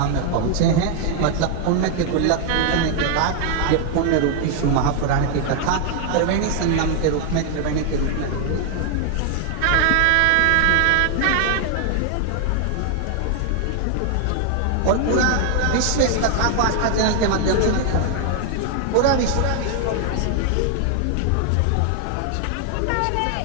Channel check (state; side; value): different; both; correlation 0.00